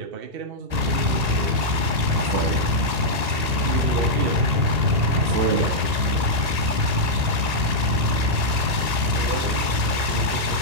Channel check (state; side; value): late; left; 1.8 ms